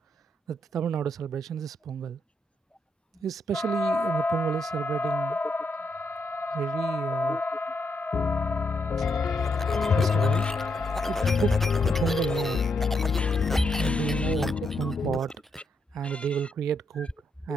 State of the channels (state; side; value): normal; both; correlation 0.79